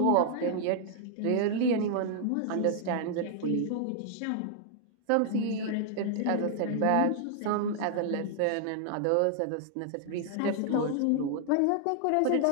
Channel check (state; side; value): different; both; correlation 0.00